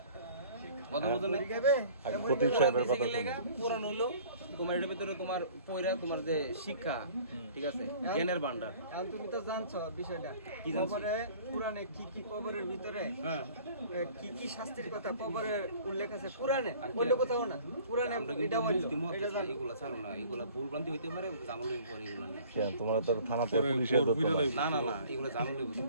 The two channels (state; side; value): inverted; both; correlation -0.50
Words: কথা বলছো না খতিব সাহেবের কথা পুরান হইলো তোমার এটার ভিতরে তোমার পয়রা তোমার যে শিক্ষা ঠিক আছে জ্ঞানের ভান্ডার এখন তুমি তো জানছো বিষয়টা কি জানছো? কবরে পুরাণে কি কি কবরের ভিতরে হ্যাঁ কি কি শাস্তির কথা কবরের উল্লেখ আছে পুরাণে অন্য কোথাও না পুরাণে আমরা কিন্তু এটা বলছো মুফতি মত এটা জানো। এগুলা ছাড়ো না এগুলা ভুল ভ্রান্তি হইতে পারে জামল হইতে পারে এগুলা নিয়ে কেন তোমরা তো থানাতে পুলিশের ধরতে পারো না না না এগুলা জামল হইতে